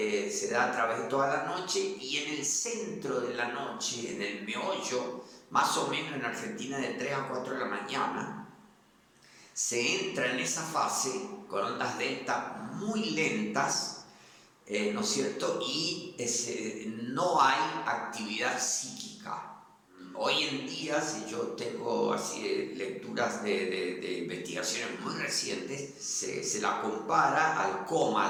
da a través de toda la noche, y en el centro de la noche, en el meollo, más o menos en Argentina de 3 a 4 de la mañana, se entra en esa fase con ondas delta muy lentas, ¿no es cierto? Y no hay actividad psíquica. Hoy en día, si yo tengo así lecturas de investigaciones muy recientes, se la compara al coma,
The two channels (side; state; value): both; identical; correlation 1.00